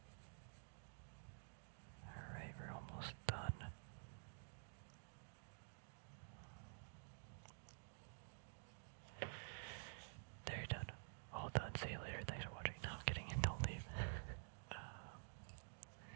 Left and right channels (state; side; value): silent; left; digital silence